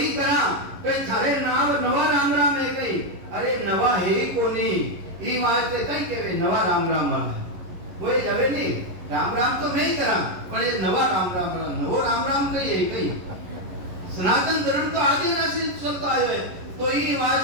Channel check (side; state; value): left; late; 11 ms